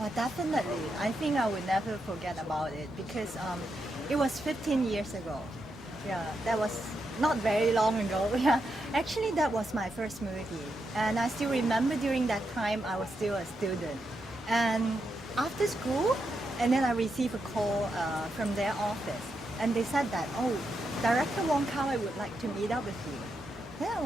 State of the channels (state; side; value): normal; both; correlation 0.84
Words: definitely. I think I will never forget about it because it was 15 years ago. Yeah, that was not very long ago. Yeah, actually, that was my first movie, and I still remember during that time I was still a student, and after school, and then I received a call from their office, and they said that, oh, director Wong Kar Wai would like to meet up with you. Then I